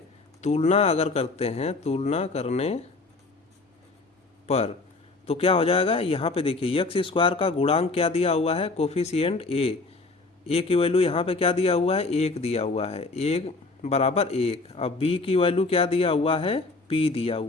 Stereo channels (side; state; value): right; quieter; 3.6 dB